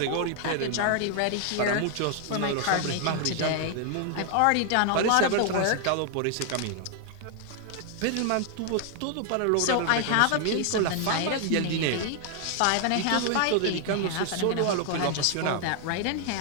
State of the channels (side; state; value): both; different; correlation 0.00